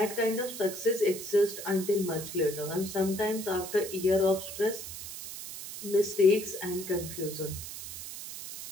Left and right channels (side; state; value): right; noise; hiss, 9 dB below the sound